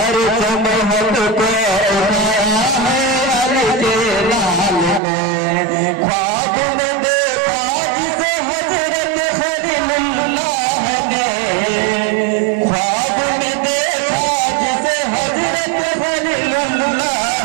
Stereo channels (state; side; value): drops out; left; at 5.0 s